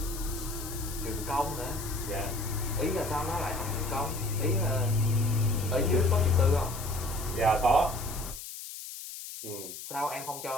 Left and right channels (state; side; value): noise; left; hiss, 10 dB below the sound